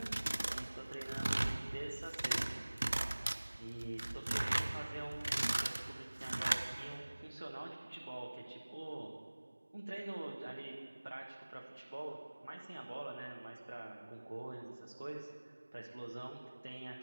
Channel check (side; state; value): both; inverted; correlation -1.00